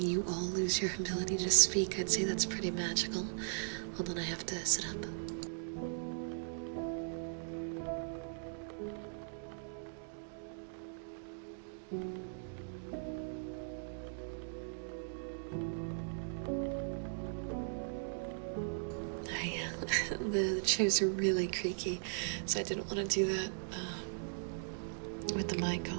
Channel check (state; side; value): silent; left; digital silence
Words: all lose your ability to speak. I'd say that's pretty magical. Hold on, I have to sit up. The chairs are really creaky, so I didn't want to do that with the mic